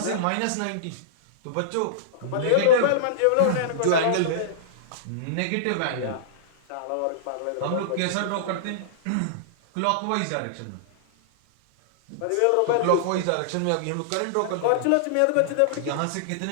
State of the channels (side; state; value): both; different; correlation -0.02